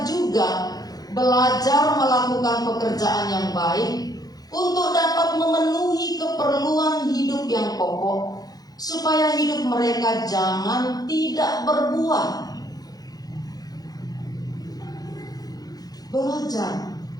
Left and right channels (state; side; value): late; right; 0.19 ms